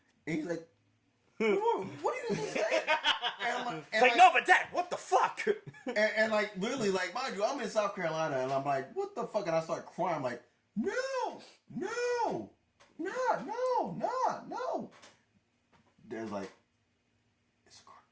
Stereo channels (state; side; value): identical; both; correlation 1.00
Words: And he's like, what are you just saying? And I'm like, It's like, no, but Dad, what the fuck? and like, literally, like, mind you, I'm in South Carolina, and I'm like, what the fuck? And I start crying. I'm like, no. There's like, it's a